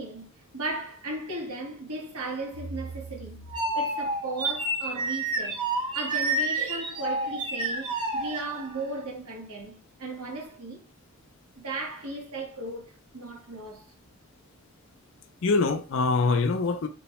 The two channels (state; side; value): normal; both; correlation 0.05